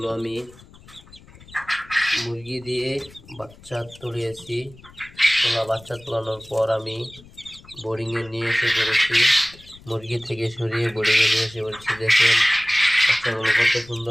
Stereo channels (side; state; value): left; noise; rumble, 23 dB below the sound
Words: আমি মুরগি দিয়ে বাচ্চা তুলিয়েছি। বাচ্চা তোলানোর পর আমি বোর্ডিংয়ে নিয়ে এসে পড়েছি। মুরগি থেকে সরিয়ে বোর্ডিংয়ে নিয়ে এসে পড়েছি। দেখেন বাচ্চাগুলো কত